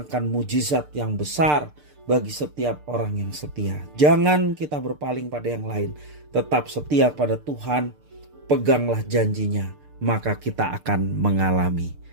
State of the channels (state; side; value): late; left; 6.7 ms